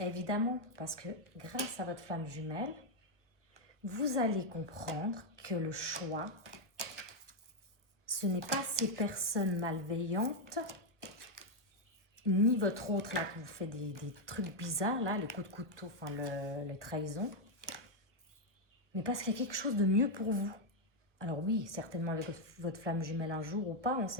Parce que grâce à votre flamme jumelle, vous allez comprendre que le choix, ce n'est pas ces personnes malveillantes, ni votre autre là qui vous fait des trucs bizarres, là, les coups de couteau, enfin les trahisons, mais parce qu'il y a quelque chose de mieux pour vous. Alors oui, certainement avec votre flamme jumelle un jour ou pas, on ne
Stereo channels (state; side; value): late; left; 1.0 ms